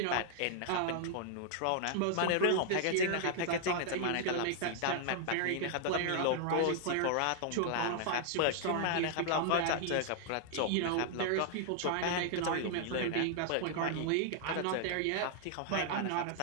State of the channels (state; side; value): different; both; correlation 0.00